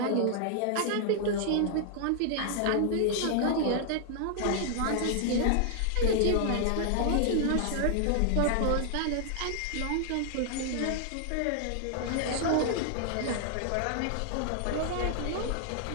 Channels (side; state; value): both; different; correlation -0.01